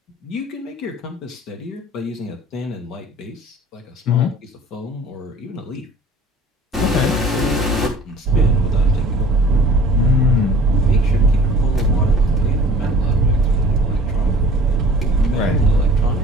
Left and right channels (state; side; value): normal; both; correlation 0.48